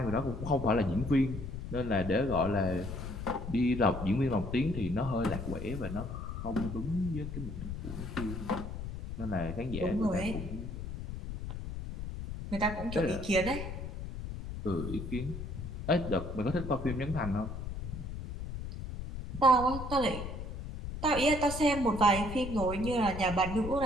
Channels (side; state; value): left; noise; rumble, 7 dB below the sound